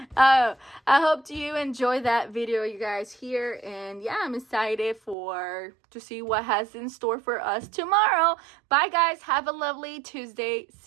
I hope you enjoy that video, you guys, here. And yeah, I'm excited to see what has in store for us tomorrow. Bye, guys. Have a lovely Tuesday.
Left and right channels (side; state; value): left; drops out; at 5.2 s